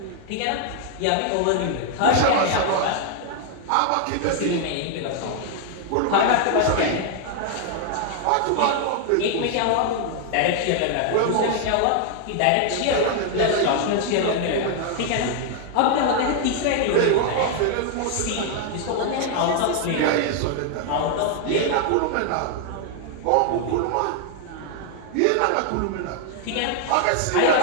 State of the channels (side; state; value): both; different; correlation 0.00